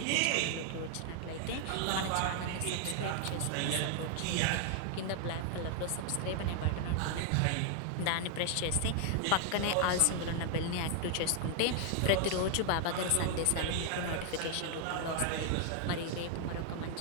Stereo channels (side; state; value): both; different; correlation 0.00